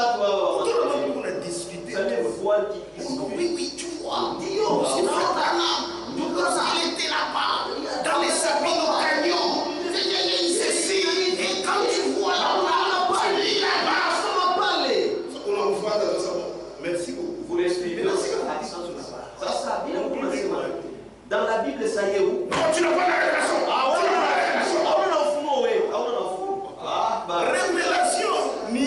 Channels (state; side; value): identical; both; correlation 1.00